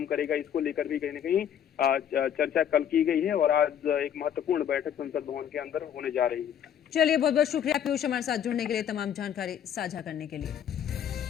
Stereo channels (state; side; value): quieter; right; 9.2 dB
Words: करेगा, इसको लेकर भी कहीं न कहीं चर्चा कल की गई है और आज एक महत्वपूर्ण बैठक संसद भवन के अंदर होने जा रही है। चलिए, बहुत बहुत शुक्रिया पीयूष हमारे साथ जुड़ने के लिए, तमाम जानकारी साझा करने के लिए।